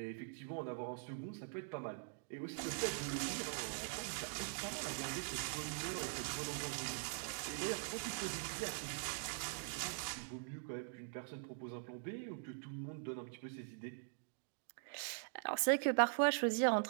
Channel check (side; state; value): left; silent; digital silence